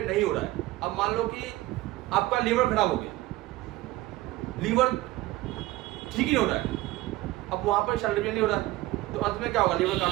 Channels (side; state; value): left; quieter; 17.6 dB